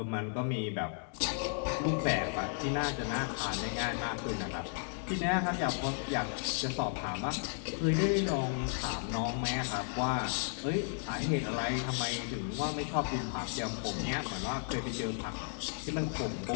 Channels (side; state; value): right; silent; 55 dB below the other